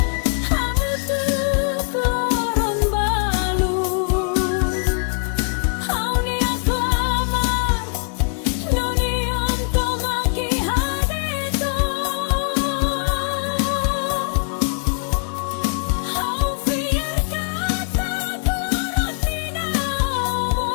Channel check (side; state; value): right; silent; 55 dB below the other